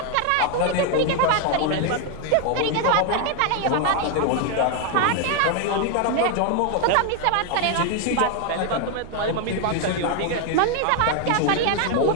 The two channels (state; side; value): different; both; correlation 0.01